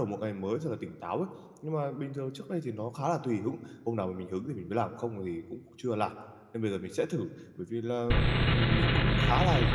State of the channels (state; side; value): identical; both; correlation 1.00